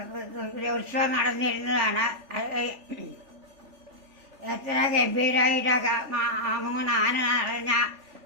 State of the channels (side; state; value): left; late; 3.4 ms